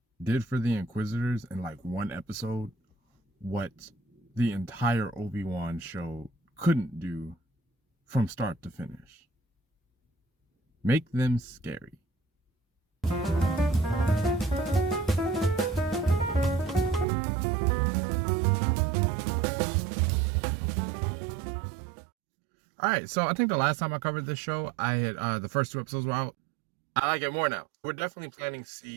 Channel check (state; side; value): drops out; left; at 17.1 s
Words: did for the Inquisitors in like one episode what the entire Obi-Wan show couldn't do from start to finish. Make them scary. All right, so I think the last time I covered this show, I had the first two episodes were out. I like it more now. We're definitely planting